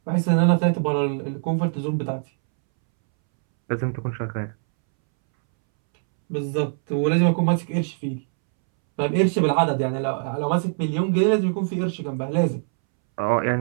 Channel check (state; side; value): silent; left; 64 dB below the other